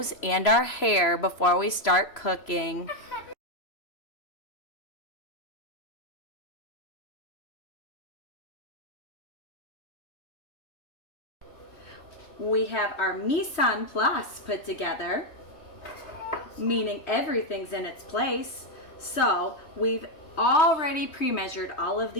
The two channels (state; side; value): late; right; 3.0 ms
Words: and our hair before we start cooking. We have our mise en place put together, meaning everything's in its place. So we've already pre-measured all of